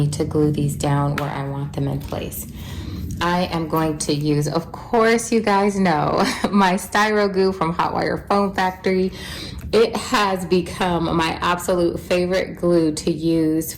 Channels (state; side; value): identical; both; correlation 1.00